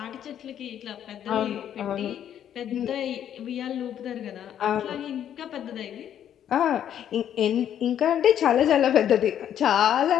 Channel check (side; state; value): right; quieter; 10.0 dB